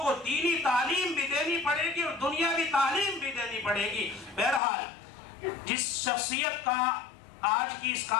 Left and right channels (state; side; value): drops out; right; at 4.6 s